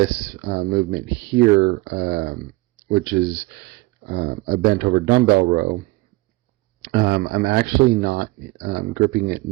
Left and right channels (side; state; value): left; quieter; 21.7 dB